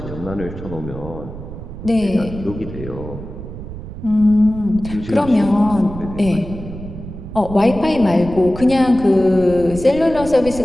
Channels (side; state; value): right; noise; rumble, 11 dB below the sound